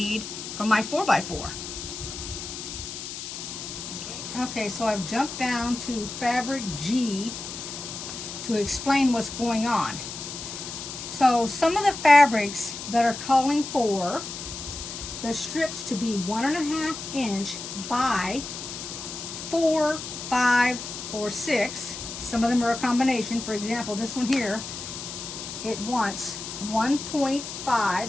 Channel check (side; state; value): left; noise; hiss, 8 dB below the sound